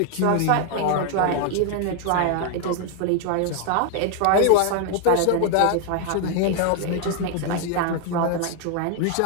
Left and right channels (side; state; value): both; different; correlation 0.00